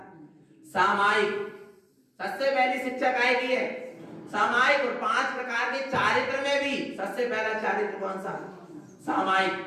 सामायिक। सबसे पहली शिक्षा काय की है? सामायिक। और 5 प्रकार के चारित्र में भी सबसे पहला चारित्र कौन सा? सामायिक।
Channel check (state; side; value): identical; both; correlation 1.00